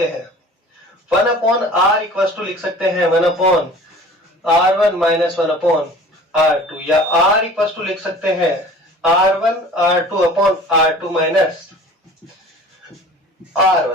हैं, 1/R इक्वल टू लिख सकते हैं 1/R1 माइनस 1/R2, या R इक्वल टू लिख सकते हैं R1/R2 माइनस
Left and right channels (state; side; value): normal; both; correlation 0.44